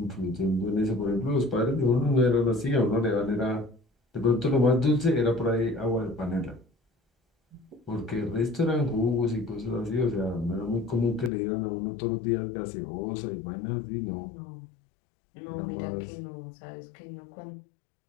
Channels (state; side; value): drops out; right; at 11.3 s